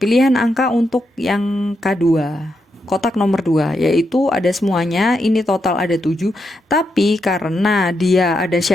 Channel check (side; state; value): both; normal; correlation 0.83